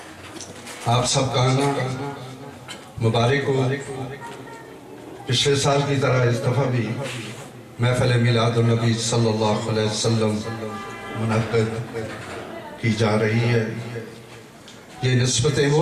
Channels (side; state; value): both; identical; correlation 1.00